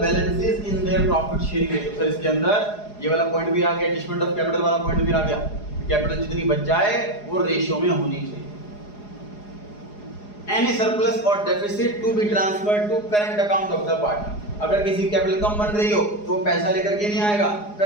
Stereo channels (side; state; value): right; late; 4.8 ms